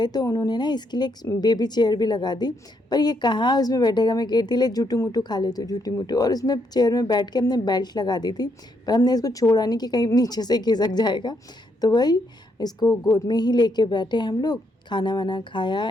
तो उन्होंने ना इसके लिए एक बेबी चेयर भी लगा दी, पर ये कहाँ उसमें बैठेगा। मैं कहती ले झूठू मूठू खा ले, तो झूठी मूठू, और उसमें चेयर में बैठ के हमने बेल्ट लगा दी थी, पर हमने इसको छोड़ा नहीं कि कहीं नीचे से खिसक जाएगा। तो वही इसको गोद में ही लेके बैठे हम लोग, खाना वाना खाया,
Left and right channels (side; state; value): both; normal; correlation 0.76